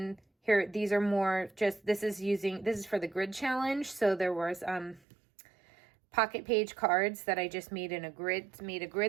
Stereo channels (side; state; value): left; drops out; at 5.0 s